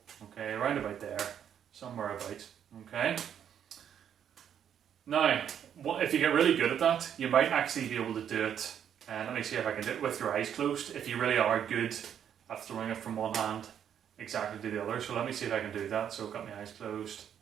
Okay, around about there, somewhere about. Okay. Now, if you get really good at that, you might actually be able to do it. And let me see if I can do it with your eyes closed. If you really are good at throwing it from one hand exactly to the other. So let me see if I can do that. So I've got my eyes closed.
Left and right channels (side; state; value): left; quieter; 9.0 dB